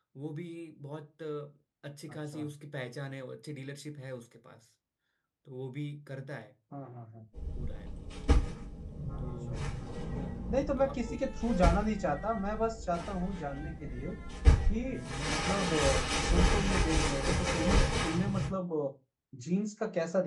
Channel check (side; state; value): both; identical; correlation 1.00